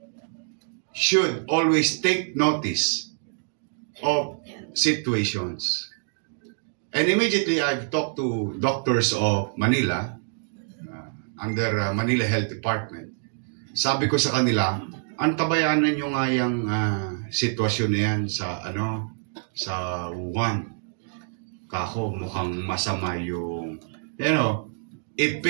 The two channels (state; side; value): silent; left; digital silence